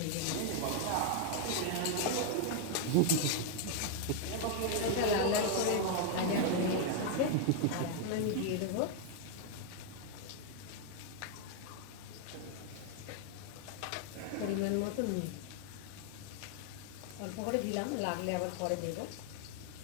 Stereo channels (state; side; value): different; both; correlation 0.00